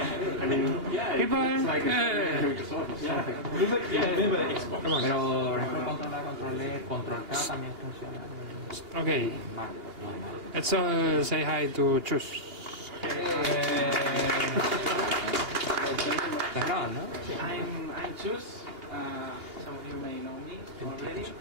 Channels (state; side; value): late; left; 2.8 ms